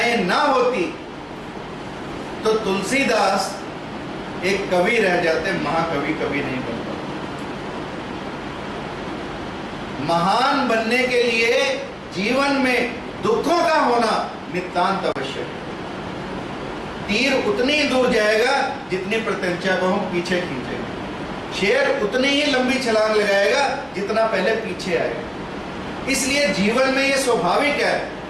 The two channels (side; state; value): both; identical; correlation 1.00